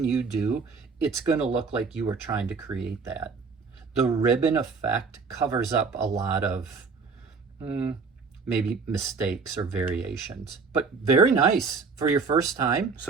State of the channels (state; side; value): quieter; left; 4.8 dB